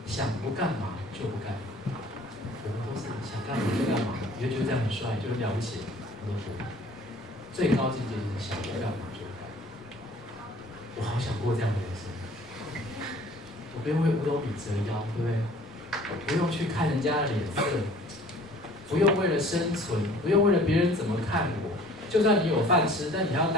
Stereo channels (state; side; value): normal; both; correlation 0.51